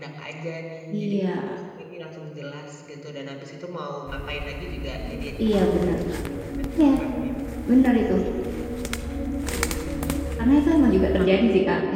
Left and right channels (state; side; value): identical; both; correlation 1.00